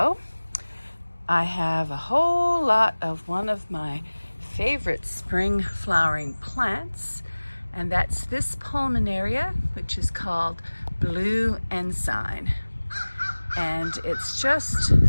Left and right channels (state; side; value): inverted; both; correlation -1.00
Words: I have a whole lot of one of my favorite spring flowering plants, and that's this pulmonaria, which is called blue ensign. And it's just